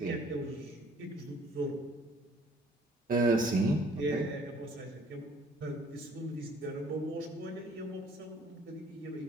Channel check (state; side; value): normal; both; correlation 0.57